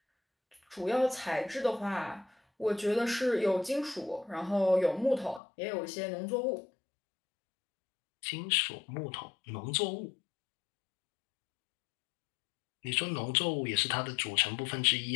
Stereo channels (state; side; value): drops out; right; at 5.4 s